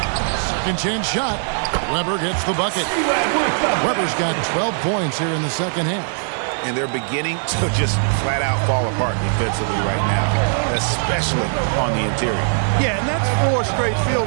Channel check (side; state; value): left; silent; digital silence